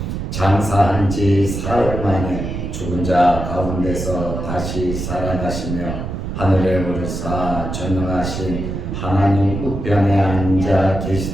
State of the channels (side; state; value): right; noise; rumble, 5 dB below the sound